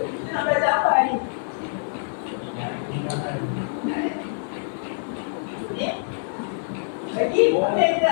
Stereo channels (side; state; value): right; silent; 62 dB below the other